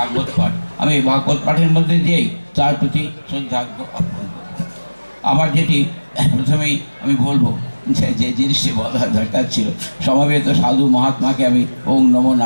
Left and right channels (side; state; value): both; inverted; correlation -1.00